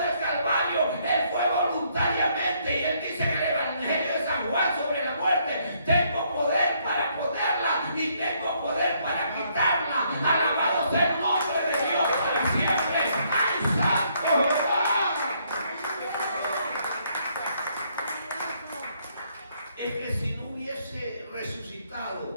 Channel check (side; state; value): both; inverted; correlation -0.70